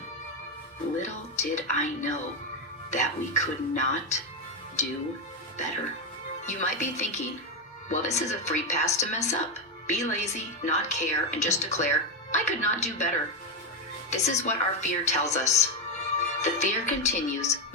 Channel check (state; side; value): normal; both; correlation 0.08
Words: Little did I know that we could not do better. You might be thinking, well, this is a free pass to mess up. Be lazy, not care, and just declare, I could not do better. This is what our fear tells us. The fear continues